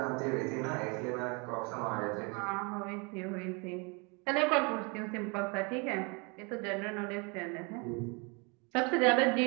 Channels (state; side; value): quieter; left; 31.3 dB